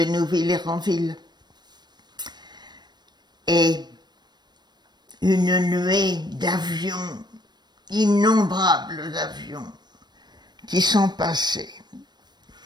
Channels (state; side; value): late; left; 0.21 ms